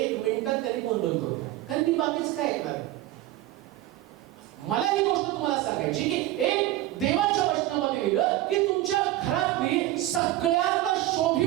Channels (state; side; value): quieter; left; 15.3 dB